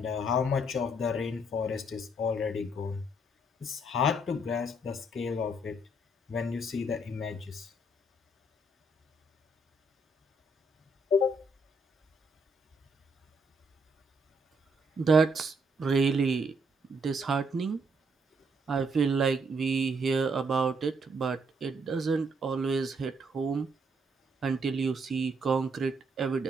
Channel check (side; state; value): both; normal; correlation 0.72